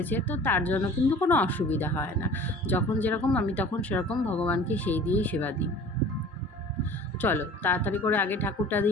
তো তার জন্য কিন্তু কোনো অসুবিধা হয় না। যখন যেরকম আমি তখন সেরকম ভগবানকে সেই দিয়েই সেবা দিই। চলো তাড়াতাড়ি করে আগে ঠাকুরটা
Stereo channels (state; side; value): normal; both; correlation 0.44